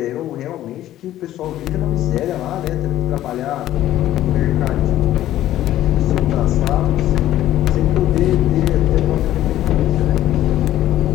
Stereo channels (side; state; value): right; quieter; 13.4 dB